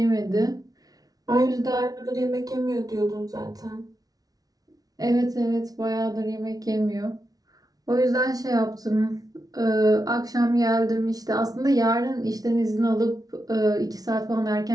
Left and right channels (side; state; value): left; late; 0.18 ms